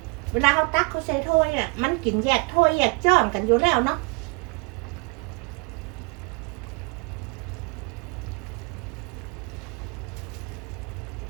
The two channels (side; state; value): left; quieter; 30.9 dB